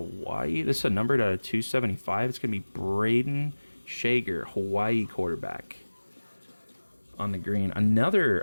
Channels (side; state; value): both; inverted; correlation -1.00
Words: This is a numbered out of 275. It's going to be Braden Shager, Hawaii quarterback on the green. Another